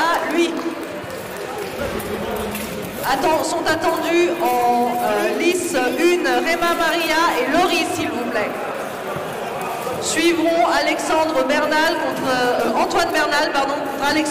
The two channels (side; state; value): both; identical; correlation 1.00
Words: lui. Sont attendus en lice 1 Réma Maria et Laurie, s'il vous plaît. Suivront Alexandre Bernal contre Antoine Bernal, pardon, contre